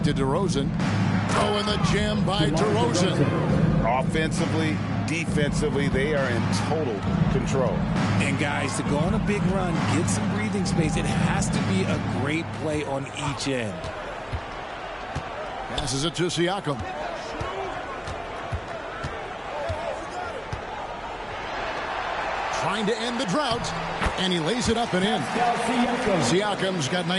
to DeRozan. Oh, and the jam by DeRozan. Offensively, defensively, they are in total control. And guys, to go on a big run, get some breathing space, it has to be a great play on each end. Passes it to Siakam. Trying to end the drought, and he lays it up and in. Siakam's got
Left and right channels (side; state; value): both; identical; correlation 1.00